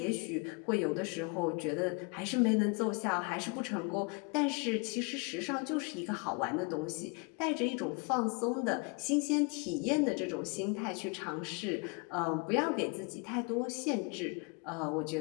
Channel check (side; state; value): right; quieter; 33.1 dB